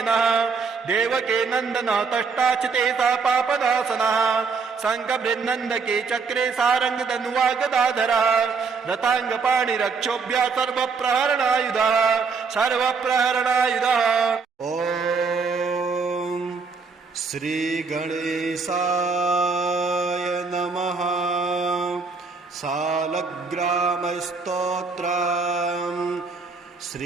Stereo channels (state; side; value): quieter; left; 4.9 dB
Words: देवके नन्दनः तष्टाचिते सा पापनाशनः शङ्खबृन्नन्दके चक्रे सारङ्गधनुवा गदाधरः रथाङ्गपाणिरक्षोभ्यः सर्वप्रहरणायुधः सर्वप्रहरणायुधः ॐ श्रीगणेशाय नमः सालग्रामस्तोत्रम्